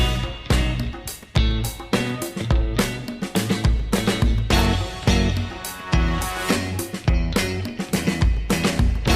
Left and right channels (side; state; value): both; identical; correlation 1.00